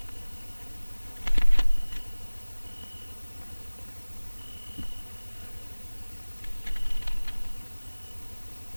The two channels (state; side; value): inverted; both; correlation -1.00